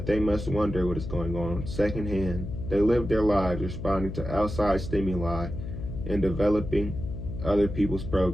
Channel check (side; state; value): left; noise; hum, 7 dB below the sound